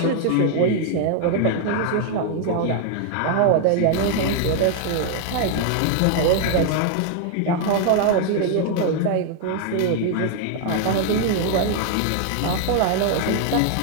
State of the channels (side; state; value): both; different; correlation 0.00